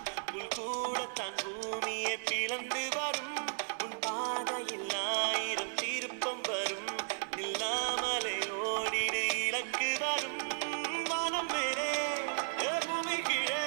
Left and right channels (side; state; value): left; silent; digital silence